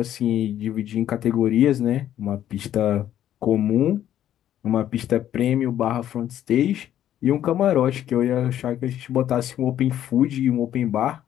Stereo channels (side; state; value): right; quieter; 11.3 dB